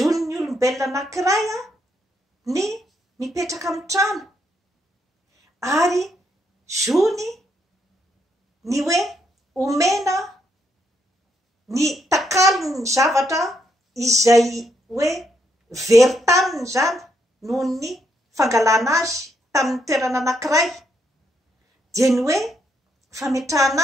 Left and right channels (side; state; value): both; normal; correlation 0.76